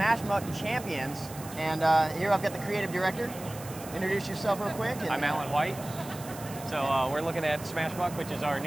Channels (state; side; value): noise; right; hiss, 15 dB below the sound